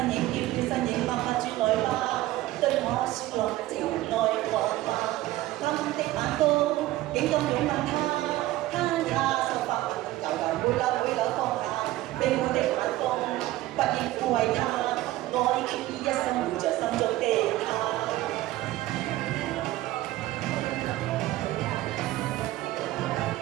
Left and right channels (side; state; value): left; quieter; 16.3 dB